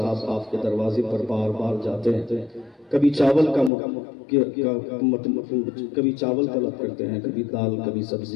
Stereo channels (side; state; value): right; drops out; at 3.7 s